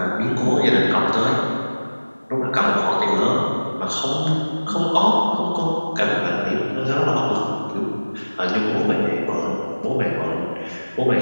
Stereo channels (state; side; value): inverted; both; correlation -1.00